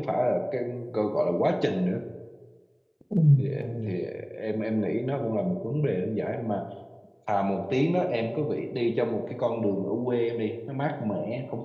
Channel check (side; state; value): both; identical; correlation 1.00